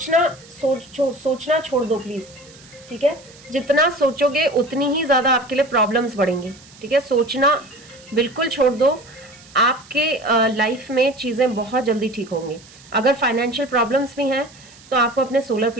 छोड़ दो प्लीज़। ठीक है, जितना सोचोगे उतनी ही ज़्यादा आपके लिए प्रॉब्लम्स बढ़ेंगी। ठीक है, सोचना बिल्कुल छोड़ दो, आपके लाइफ में चीज़ें बहुत जल्दी ठीक होंगी। अगर फाइनेंशियल प्रॉब्लम्स भी हैं तो आपको अपने सोलर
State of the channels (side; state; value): right; noise; hiss, 23 dB below the sound